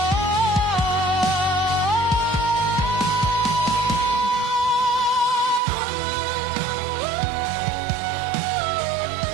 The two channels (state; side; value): drops out; left; at 5.6 s